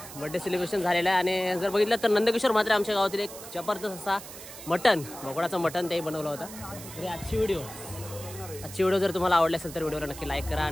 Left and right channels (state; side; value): noise; right; hiss, 14 dB below the sound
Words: बर्थडे सेलिब्रेशन झालेलं आहे. आणि जर बघितलं तर नंदकिशोर म्हात्रे आमच्या गावातील एक जबरदस्त असा मटण, बोकडाचं मटण तेही बनवलं होतं. तरी आजची व्हिडिओ जर तुम्हाला आवडली असेल तर व्हिडिओला नक्की लाईक करा